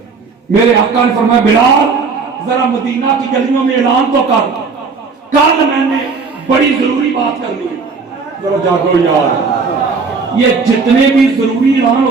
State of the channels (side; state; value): left; quieter; 4.8 dB